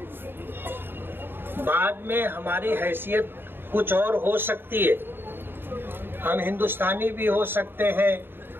बाद में हमारी हैसियत कुछ और हो सकती है। हम हिंदुस्तानी भी हो सकते हैं,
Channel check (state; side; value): late; left; 0.10 ms